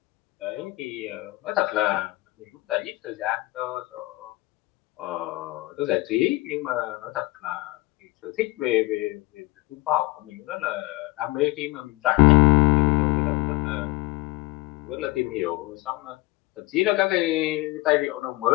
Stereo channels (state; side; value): quieter; right; 20.9 dB